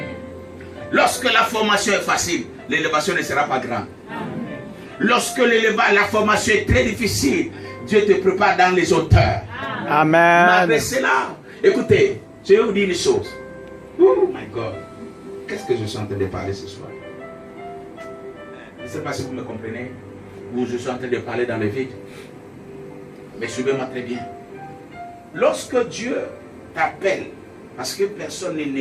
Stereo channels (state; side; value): identical; both; correlation 1.00